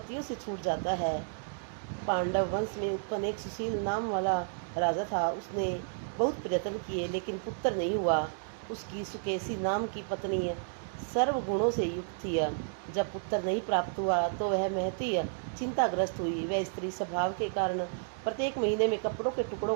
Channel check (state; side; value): silent; left; digital silence